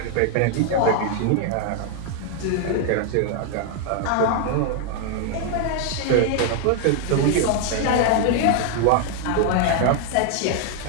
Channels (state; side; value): different; both; correlation 0.00